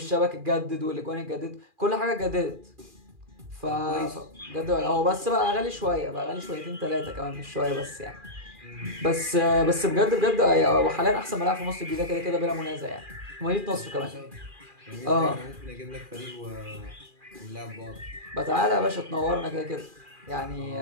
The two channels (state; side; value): late; left; 2.4 ms